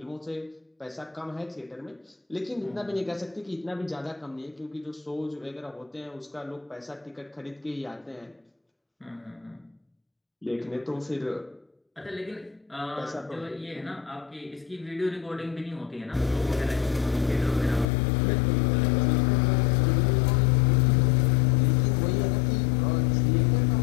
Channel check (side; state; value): right; drops out; at 17.9 s